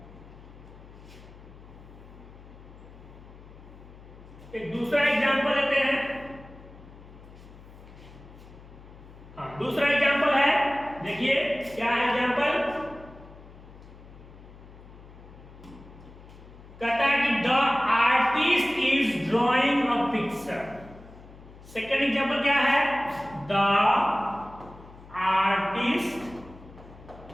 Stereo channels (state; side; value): noise; left; hum, 19 dB below the sound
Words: एक दूसरा एग्जांपल लेते हैं। हाँ, दूसरा एग्जांपल है, देखिए क्या है एग्जांपल, कहता है कि the artist is drawing a picture. Second example क्या है, the artist